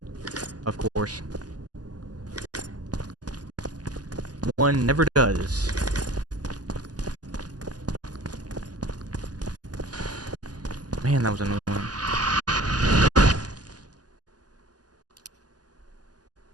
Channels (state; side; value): late; left; 0.68 ms